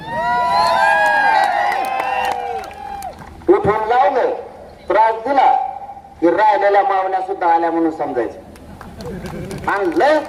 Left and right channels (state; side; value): identical; both; correlation 1.00